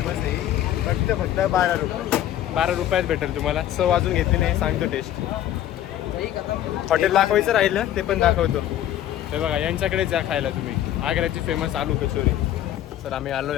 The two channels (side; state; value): right; quieter; 12.0 dB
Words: आहे. फक्त 12 रुपये. 12 रुपयात भेटेल तुम्हाला. चव अजून घेतली नाही, सांगतो टेस्ट. हॉटेल दाखवायचं राहिलं ते पण दाखवतो. हे बघा, यांच्याकडे जा खायला तुम्ही. आग्र्याची फेमस आलू कचोरी. तर आम्ही